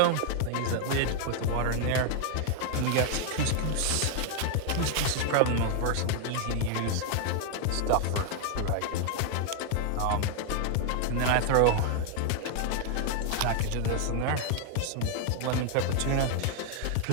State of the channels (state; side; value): different; both; correlation 0.00